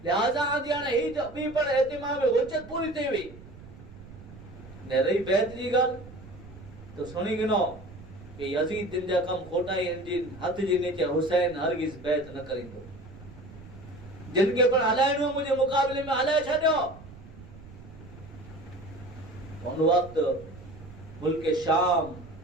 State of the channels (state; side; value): noise; right; rumble, 17 dB below the sound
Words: लिहाजा आजी हाने ही बी पण एतिमाम में हुज्जत पूरी थई हुई ने रही बैत जी गल तो सुनी गिनो कि यजीद दिन जा कम खोटा इंजिन हथ जी नीचे हुसैन हरगिज बैत न करिंदो, जिनके पर हलाइनो मुझे मुकाबले में हलाए छड्यो। उन वक्त मुल्क शाम